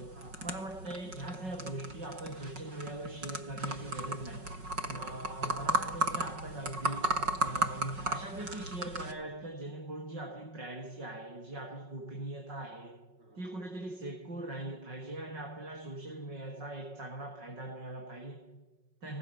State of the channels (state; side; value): late; left; 5.4 ms